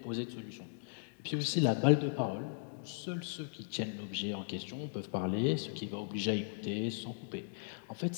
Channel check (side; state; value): right; silent; digital silence